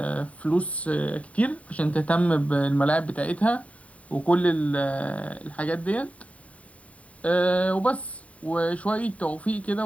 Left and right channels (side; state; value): right; late; 0.067 ms